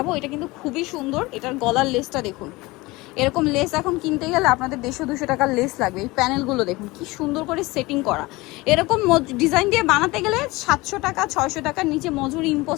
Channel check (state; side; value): quieter; right; 21.8 dB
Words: এটা কিন্তু খুবই সুন্দর। এটার গলার লেসটা দেখুন, এরকম লেস এখন কিনতে গেলে আপনাদের 150-200 টাকার লেস লাগবে। এই প্যানেলগুলো দেখুন কি সুন্দর করে সেটিং করা। এরকম ডিজাইন দিয়ে বানাতে গেলে 700 টাকা 600 টাকার নিচে মজুরি